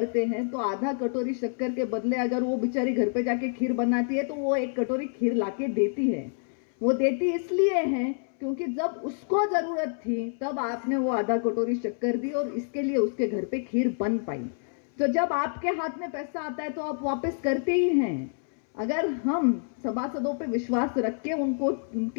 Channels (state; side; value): silent; right; 60 dB below the other